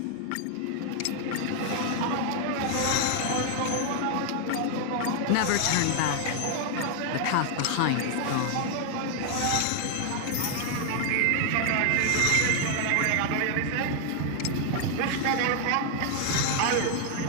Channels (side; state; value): both; different; correlation 0.00